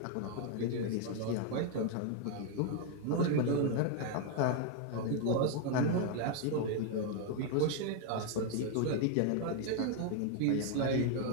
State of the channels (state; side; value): different; both; correlation 0.00